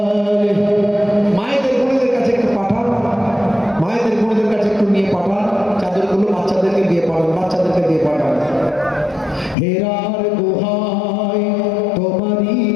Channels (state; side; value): drops out; right; at 9.6 s